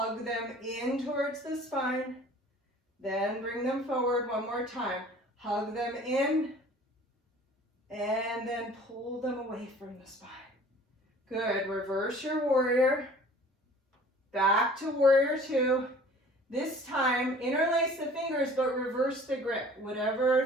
them in towards the spine, then bring them forward one more time. Hug them in and then pull them away from the spine. Good. Reverse your warrior. Back to warrior two. This time, interlace the fingers, but reverse the grip.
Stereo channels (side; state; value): both; normal; correlation 0.48